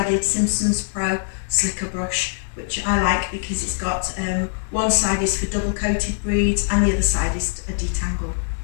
Simpsons Pro slicker brush, which I like because it's got one side is for double coated breeds and the other side is a detangle.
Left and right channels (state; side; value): silent; right; digital silence